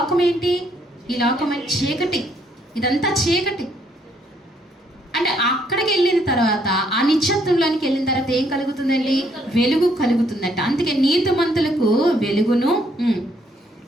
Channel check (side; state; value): both; normal; correlation 0.69